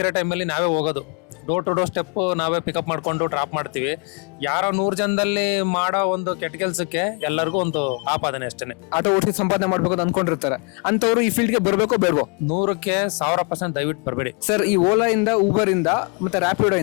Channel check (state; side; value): quieter; right; 35.6 dB